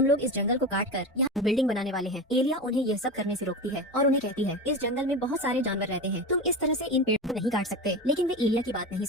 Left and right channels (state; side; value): normal; both; correlation 0.25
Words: लोग इस जंगल को काट कर यहाँ बिल्डिंग बनाने वाले हैं। एलिया उन्हें यह सब करने से रोकती है और उन्हें कहती है, इस जंगल में बहुत सारे जानवर रहते हैं, तुम इस तरह से इन पेड़ों को नहीं काट सकते। लेकिन वे एलिया की बात नहीं